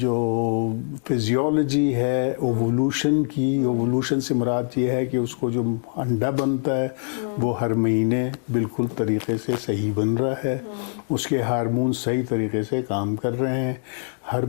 فزیولوجی ہے ایوولوشن سے مراد یہ ہے کہ اس کو جو انڈا بنتا ہے وہ ہر مہینے بالکل طریقے سے صحیح بن رہا ہے, اس کے ہارمون صحیح طریقے سے کام کر رہے ہیں, ہر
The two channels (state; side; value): silent; right; 63 dB below the other